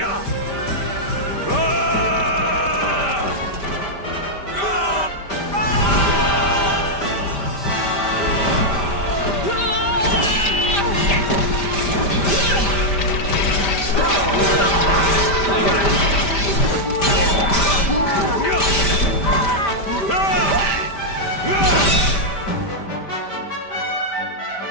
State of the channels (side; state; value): right; late; 5.1 ms